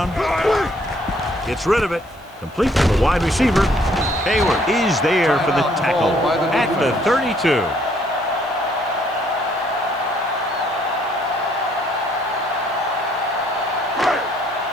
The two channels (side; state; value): right; noise; hiss, 29 dB below the sound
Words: Gets rid of it. Complete to the wide receiver. Hayward is there for the tackle at the 32.